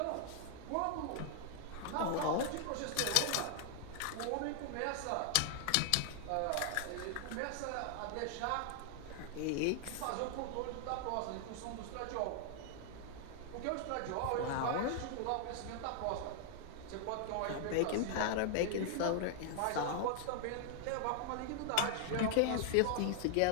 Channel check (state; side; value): different; both; correlation 0.00